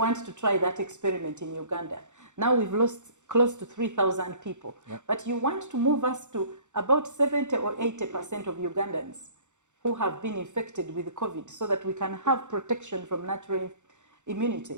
to try that experiment in Uganda. Now we've lost close to 3,000 people, but you want to move us to about 70 or 80% of Ugandans who have been infected with COVID so that we can have protection from natural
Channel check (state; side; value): late; left; 0.85 ms